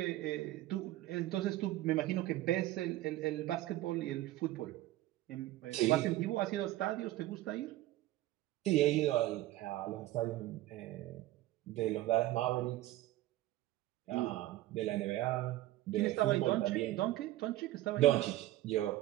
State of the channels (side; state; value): left; quieter; 16.0 dB